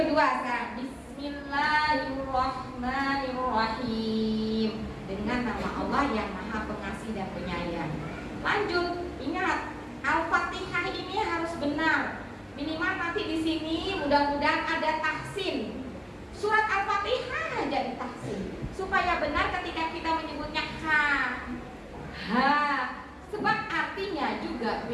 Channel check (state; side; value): identical; both; correlation 1.00